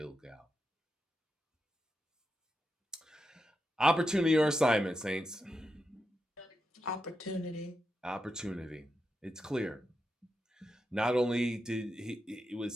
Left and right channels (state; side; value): normal; both; correlation 0.87